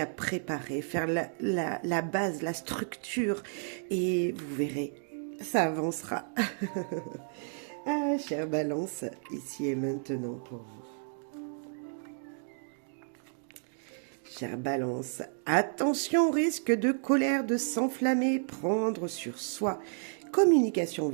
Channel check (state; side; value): silent; left; 57 dB below the other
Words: préparer, faire la base, la structure, et vous verrez, ça avancera. Ah, chère Balance, ici et maintenant pour vous. Chère Balance, attention au risque de colère, de s'enflammer, prendre sur soi. Communication